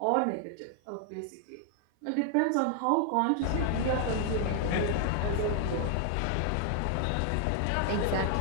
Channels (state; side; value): different; both; correlation 0.00